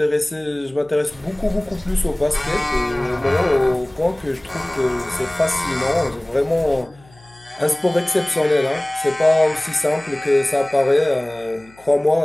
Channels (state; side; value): noise; left; hum, 27 dB below the sound